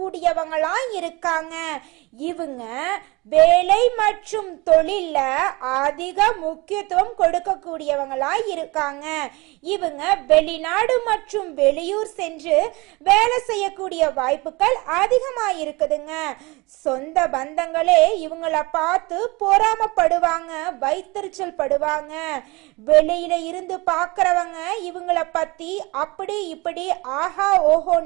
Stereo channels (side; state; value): left; quieter; 24.2 dB